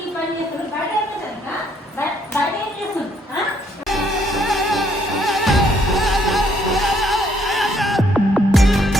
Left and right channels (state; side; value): normal; both; correlation 0.68